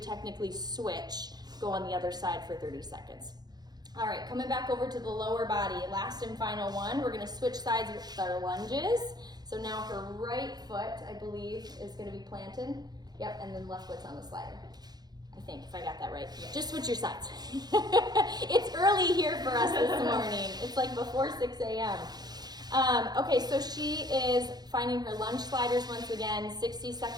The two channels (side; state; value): left; late; 0.19 ms